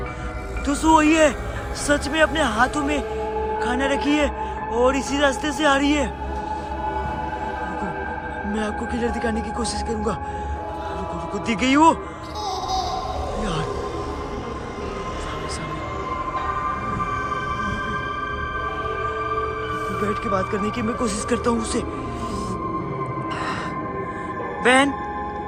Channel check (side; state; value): both; identical; correlation 1.00